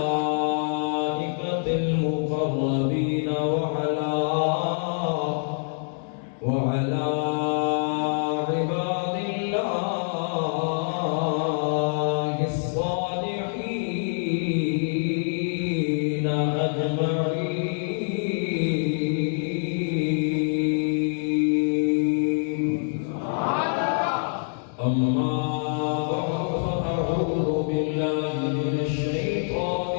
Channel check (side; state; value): right; silent; 61 dB below the other